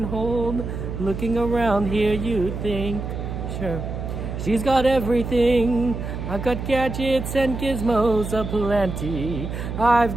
hold? Looking around here, you'd think, sure, she's got everything. I've got gadgets and gizmos aplenty.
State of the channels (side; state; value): right; noise; hum, 6 dB below the sound